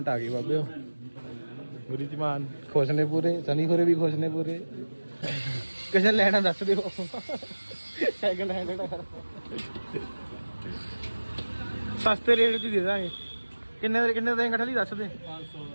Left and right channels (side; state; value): both; inverted; correlation -1.00